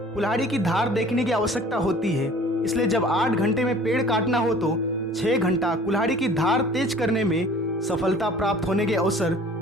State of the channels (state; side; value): normal; both; correlation 0.48